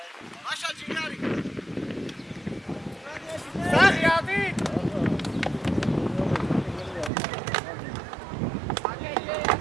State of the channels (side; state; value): left; drops out; at 7.1 s